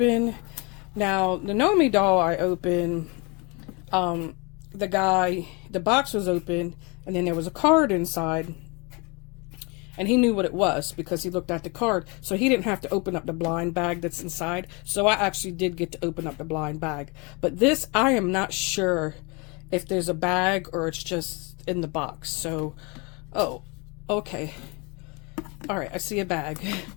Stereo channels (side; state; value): right; quieter; 29.4 dB